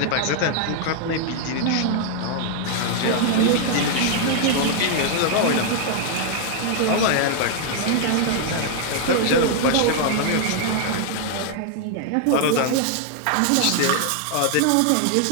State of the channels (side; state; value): both; different; correlation 0.00